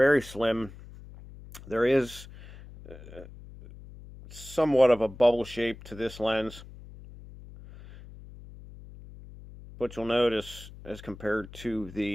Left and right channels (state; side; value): noise; left; hum, 17 dB below the sound